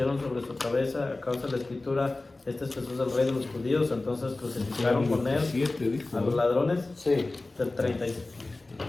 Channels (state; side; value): quieter; right; 3.1 dB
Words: sobre su cabeza a causa de la escritura, este es Jesús el Rey de los judíos, entonces crucificaron con él 27 dijo. a los ladrones. Sí, Del 36.